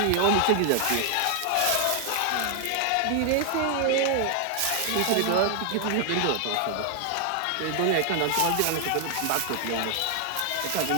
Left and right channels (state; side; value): different; both; correlation 0.00